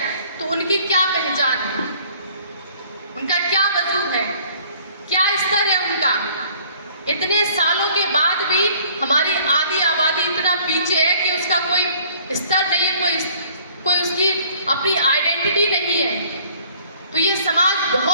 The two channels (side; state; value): both; inverted; correlation -0.56